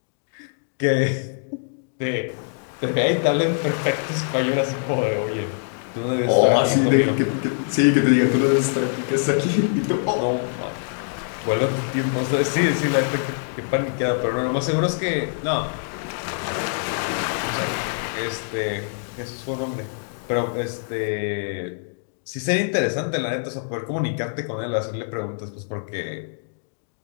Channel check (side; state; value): right; silent; digital silence